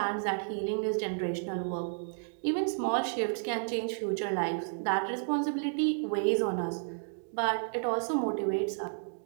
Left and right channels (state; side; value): silent; left; digital silence